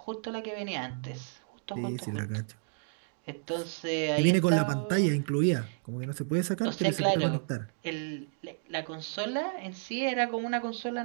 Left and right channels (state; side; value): silent; left; digital silence